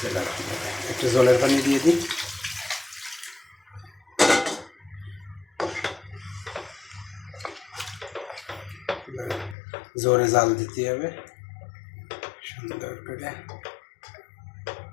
রহমানির রহিম, একটু জলের পানি দিয়ে দিই। জোরে জাল দিতে হবে সুন্দর করে।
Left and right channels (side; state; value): right; drops out; at 9.6 s